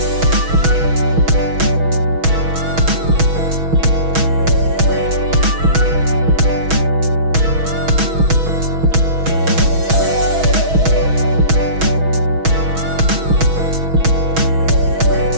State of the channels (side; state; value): left; late; 6.2 ms